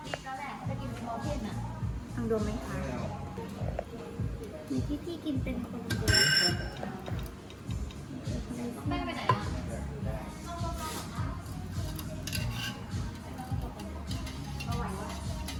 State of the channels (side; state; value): both; identical; correlation 1.00